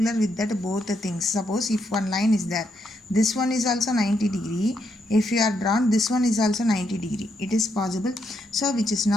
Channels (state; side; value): normal; both; correlation 0.78